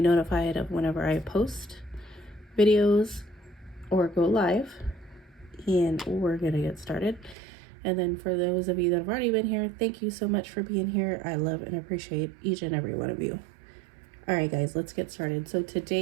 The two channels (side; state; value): left; drops out; at 7.4 s